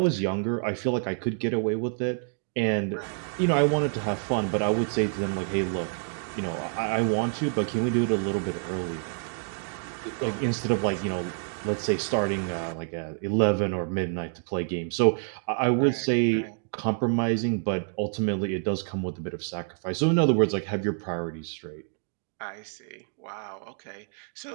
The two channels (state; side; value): silent; left; 59 dB below the other